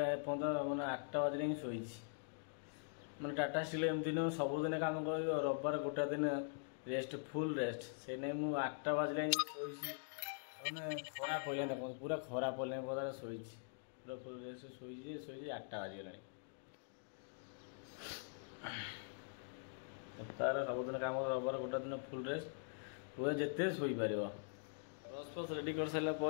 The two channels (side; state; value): right; silent; digital silence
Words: मैंने 8टा बजे ही शोई मैंने टाटा स्टील एमती नुह सबुदिन कम कर रविवार गोटे दिन रेस्ट फुल रेस्ट से नहीं मुझे 8टा बजे शोई मैंने खरा पड़े देख पूरा खरा पड़े पदार शोई पूरा फुल रेस्ट शोई 8टा बाजिगला सप्ताह सबुदिन कम रविवार गोटे दिन फुल रेस्ट पूरा जिते शोपर ब्रश फ्रश रेडी कर